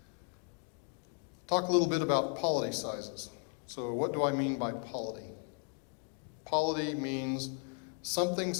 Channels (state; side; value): quieter; right; 37.2 dB